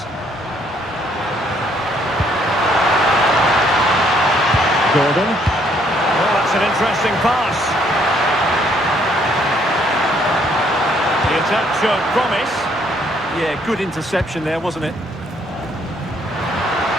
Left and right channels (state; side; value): normal; both; correlation 0.67